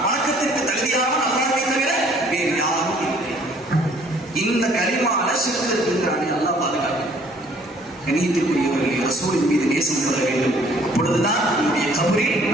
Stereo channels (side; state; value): both; normal; correlation 0.58